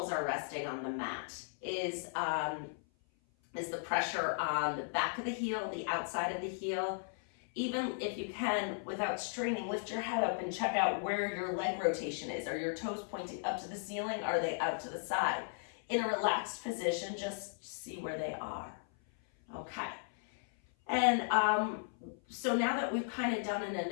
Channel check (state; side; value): silent; right; 54 dB below the other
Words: are resting on the mat is the pressure on the back of the heel, the outside of the heel. Even if you can, without straining, lift your head up and check out where your leg rotation is. Are your toes pointing up to the ceiling? Are they out to the side? In a relaxed position, just see where they are. Okay. And so now that we've kind of done an